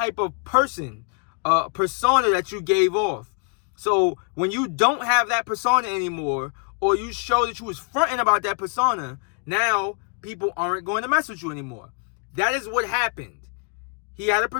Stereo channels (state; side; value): quieter; right; 37.7 dB